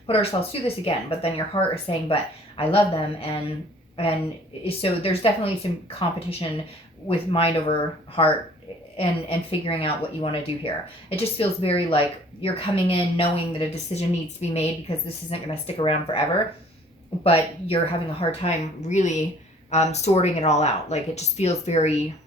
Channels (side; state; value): both; normal; correlation 0.54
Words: put ourselves through this again? But then your heart is saying, but I love them. And so there's definitely some competition with mind over heart and figuring out what you want to do here. It just feels very like you're coming in knowing that a decision needs to be made because this isn't going to stick around forever, but you're having a hard time really sorting it all out. Like, it just feels very